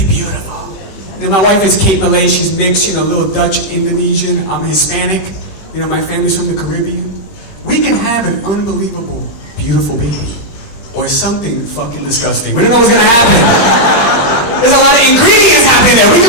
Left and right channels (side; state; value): right; late; 20 ms